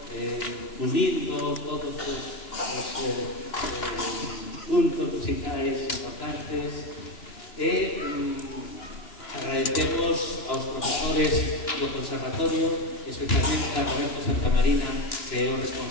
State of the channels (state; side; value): late; right; 3.0 ms